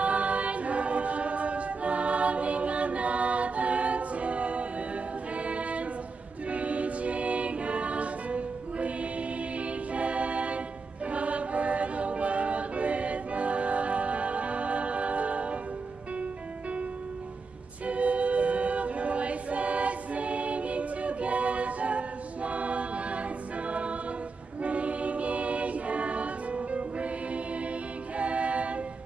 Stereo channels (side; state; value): left; quieter; 4.3 dB